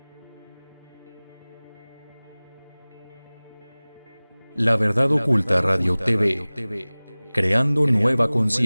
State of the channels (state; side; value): inverted; both; correlation -1.00